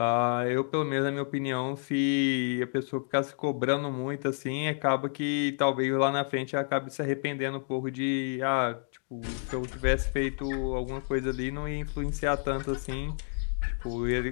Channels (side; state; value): right; silent; 58 dB below the other